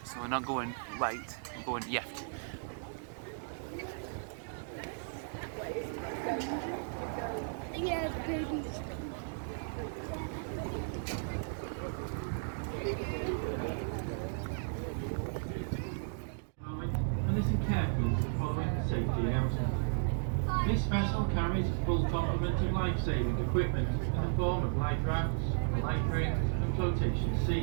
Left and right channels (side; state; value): left; silent; digital silence